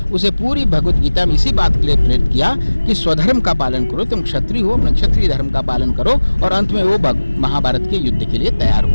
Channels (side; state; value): both; inverted; correlation -1.00